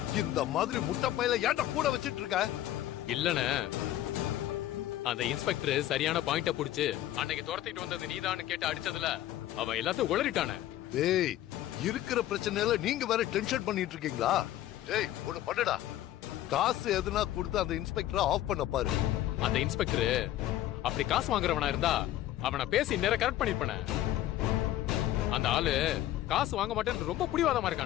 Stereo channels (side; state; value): right; quieter; 13.7 dB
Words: இந்த மாதிரி முட்டை பையில ஏன்டா கூட வச்சிட்டு இருக்க? இல்லண்ணே, அந்த இன்ஸ்பெக்டர் சரியான பாயிண்ட புடிச்சு அன்னைக்கு துரத்திட்டு வந்தது நீதான்னு கேட்டு அடிச்சதுல அவன் எல்லாத்தையும் உளறிட்டானே. டேய், இருக்கிற பிரச்சனையில நீங்க வேற டென்ஷன் பண்ணிட்டு இருக்கீங்களா? டேய், ஒண்ணு பண்ணுடா, காசு எதுனா கொடுத்து அந்த இன்ஸ்பெக்டரை ஆஃப் பண்ண பாரு. அந்த இன்ஸ்பெக்டர் அப்படி காசு வாங்குறவனா இருந்தா அவனை பேசி நேர கரெக்ட் பண்ணிருப்பானே. அந்த ஆளு காசு வாங்க மாட்டேன்னு ரொம்ப புடிவாதமா